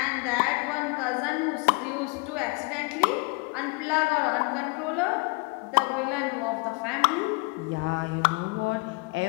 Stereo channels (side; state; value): right; quieter; 29.8 dB